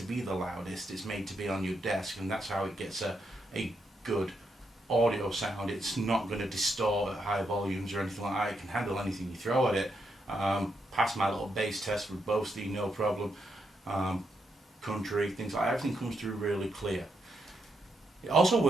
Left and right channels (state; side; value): normal; both; correlation 0.81